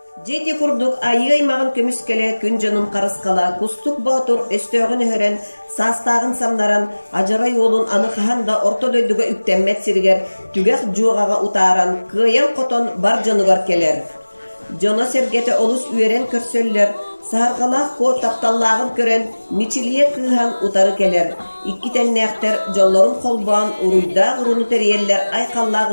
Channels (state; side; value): inverted; both; correlation -1.00